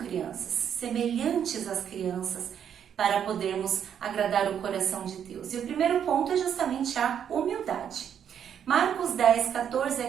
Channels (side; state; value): left; quieter; 8.6 dB